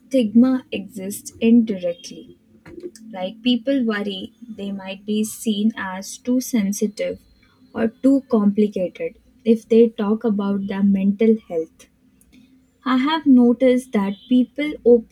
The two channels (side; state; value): both; identical; correlation 1.00